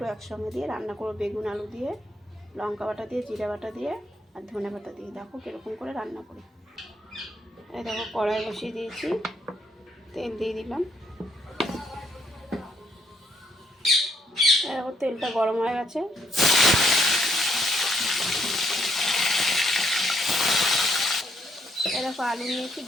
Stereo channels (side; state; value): both; normal; correlation 0.72